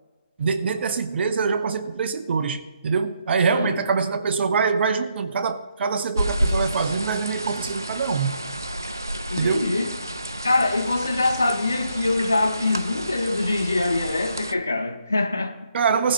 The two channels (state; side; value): inverted; both; correlation -0.75